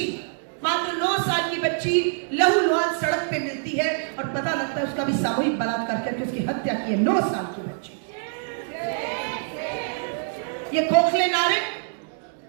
बच्ची लहूलुहान सड़क पे मिलती है और पता लगता है उसका भी सामूहिक बलात्कार करके उसकी हत्या की है। 9 साल की बच्ची। ये खोखले नारे,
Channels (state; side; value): silent; left; digital silence